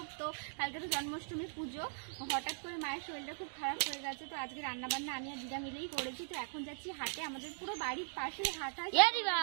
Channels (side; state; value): left; silent; digital silence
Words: তো কালকে তো জন্মাষ্টমী পুজো, হঠাৎ করে মায়ের শরীরটা খুব খারাপ হয়ে গেছে, তো আজকে রান্নাবান্না আমি আর দিদা মিলেই করেছি। তো এখন যাচ্ছি হাটে, আমাদের পুরো বাড়ির পাশেই হাট হয়।